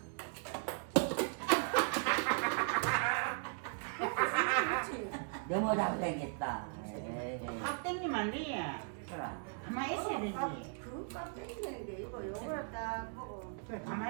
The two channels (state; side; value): silent; left; 53 dB below the other